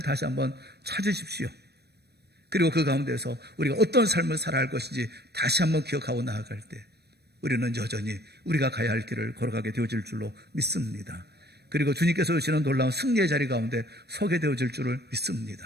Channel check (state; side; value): late; left; 0.47 ms